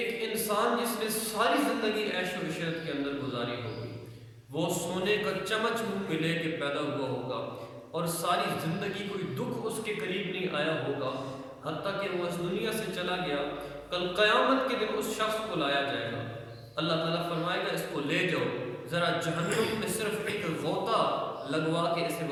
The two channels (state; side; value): identical; both; correlation 1.00